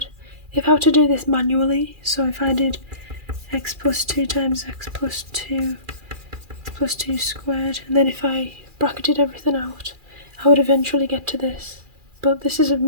If I were to do this manually, so if I did x plus 2 times x plus 2, x plus 2 squared, and then if I bracketed everything out, I would eventually get to this. But this is a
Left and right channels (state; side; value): late; left; 2.4 ms